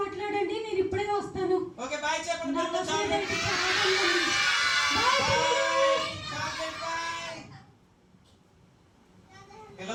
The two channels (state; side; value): identical; both; correlation 1.00